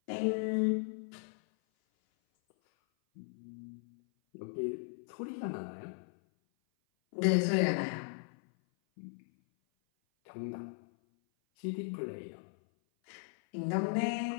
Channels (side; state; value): right; silent; 53 dB below the other